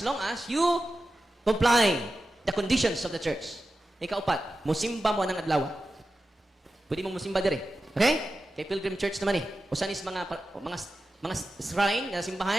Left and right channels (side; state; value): both; normal; correlation 0.92